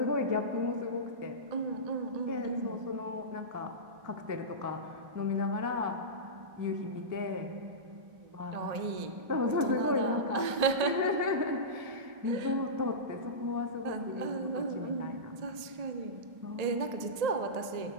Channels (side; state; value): left; late; 1.8 ms